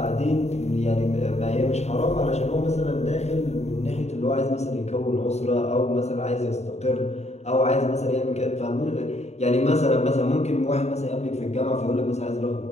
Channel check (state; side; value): late; right; 0.32 ms